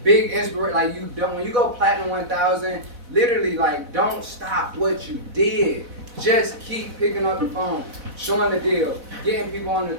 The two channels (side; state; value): left; late; 4.0 ms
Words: big inspiration, like, you don't, when you go Platinum 1000, literally, like, don't stop what you did. Just keep picking up the phone, showing the deal, getting people on the